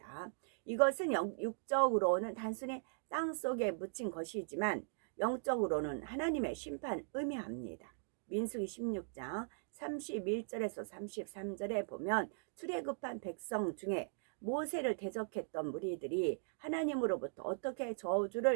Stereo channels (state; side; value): silent; left; digital silence